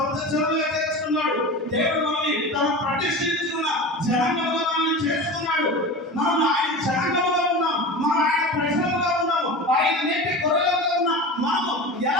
జనంగా చేసుకున్నాడు. దేవుడు మనల్ని తన ప్రతిష్ఠించుకున్న జనంగా మనల్ని చేసుకున్నాడు. మనం ఆయన జనంగా ఉన్నాం, మనం ఆయన ప్రజలుగా ఉన్నాము, ఆయన నేటి గొర్రెలుగా ఉన్నాం. మనము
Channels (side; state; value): both; normal; correlation 0.30